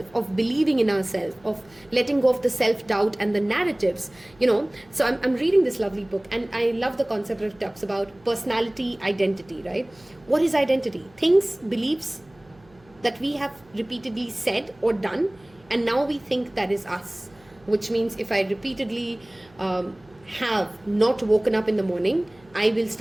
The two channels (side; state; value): right; noise; hum, 29 dB below the sound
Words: of believing in ourselves, of letting go of the self-doubt and the narratives, you know. So I'm reading this lovely book, and I love the concept that it talks about personality, identity, right? What is identity? Things, beliefs, that we have repeatedly said or done, and now we think that is us. Which means if I repeatedly have not woken up in the morning, I will